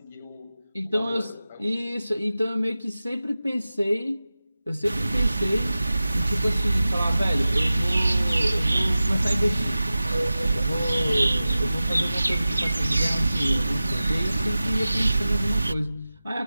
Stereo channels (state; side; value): inverted; both; correlation -0.95